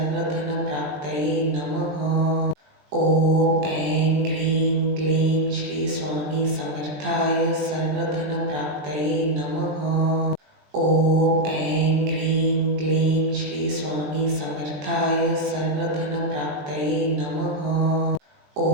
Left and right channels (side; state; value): left; late; 20 ms